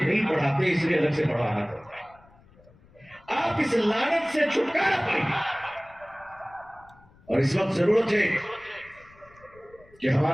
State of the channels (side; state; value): left; noise; rumble, 27 dB below the sound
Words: پڑھاتے اس لیے الگ سے پڑھانا پڑتا ہے. آپ اس لعنت سے چھٹکارا پائیں. اور اس وقت ضرورت ہے کہ